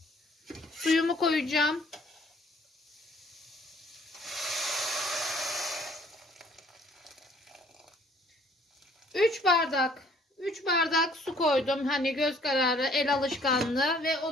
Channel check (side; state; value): both; normal; correlation 0.59